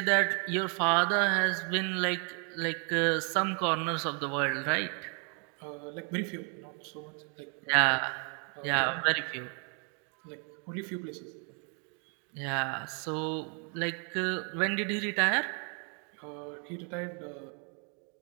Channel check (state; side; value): quieter; left; 38.1 dB